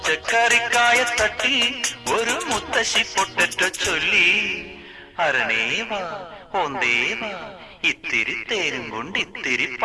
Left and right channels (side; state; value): both; identical; correlation 1.00